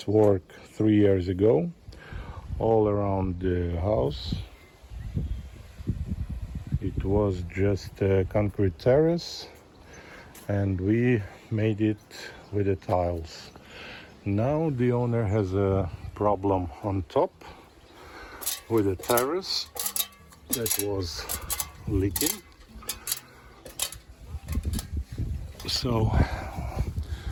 work 3 years ago, all around the house. It was just a concrete terrace, and we made it with the tiles. Now the owner has a problem on top with the terrace that was leaking. So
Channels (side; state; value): both; identical; correlation 1.00